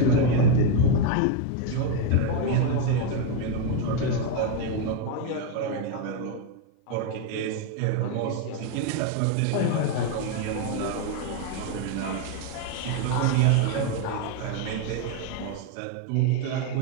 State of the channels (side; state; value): both; different; correlation 0.02